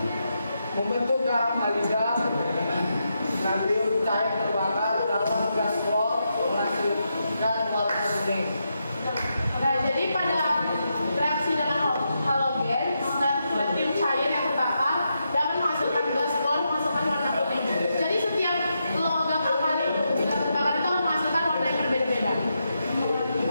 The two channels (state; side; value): inverted; both; correlation -0.84